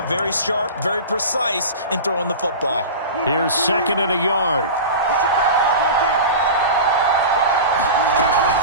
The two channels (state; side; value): inverted; both; correlation -0.30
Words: Very sharp, very precise in throwing the football. Here's 2nd and a yard.